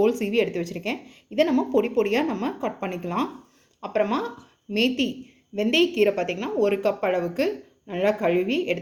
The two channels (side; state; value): both; identical; correlation 1.00